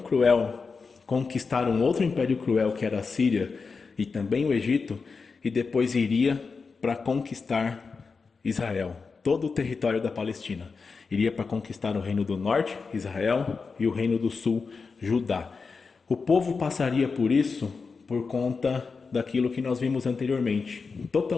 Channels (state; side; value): quieter; right; 4.8 dB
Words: conquistar um outro império cruel que era a Síria e também o Egito, e depois iria para conquistar Israel, todo o território da Palestina. Iria para conquistar o reino do norte, Israel, e o reino do sul, Judá. O povo passaria por isso por conta daquilo que nós vimos anteriormente,